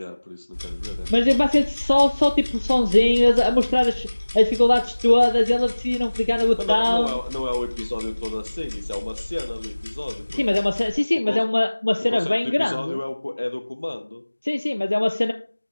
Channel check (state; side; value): inverted; both; correlation -1.00